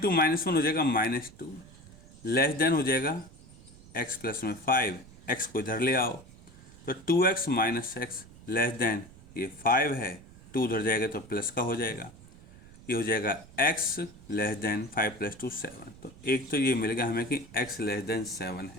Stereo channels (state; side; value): noise; right; rumble, 21 dB below the sound